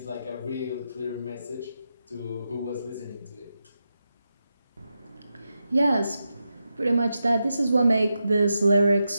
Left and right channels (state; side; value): inverted; both; correlation -0.88